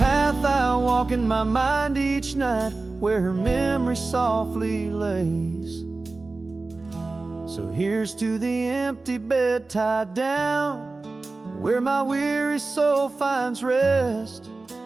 I walk in my mind each night, where her memory softly lays. So here's to the empty bed tied down, where my weary soul finds rest,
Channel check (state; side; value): quieter; left; 3.5 dB